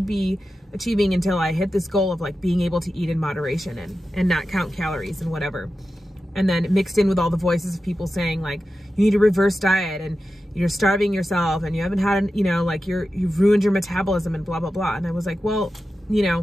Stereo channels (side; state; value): both; normal; correlation 0.92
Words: be achieving until I hit this goal of like being able to eat in moderation and not count calories and whatever. And then mixed in with all the voices of people saying like, you need to reverse diet and you're starving yourself and you haven't had, like you've ruined your metabolism and blah, blah, blah. And I was like, well,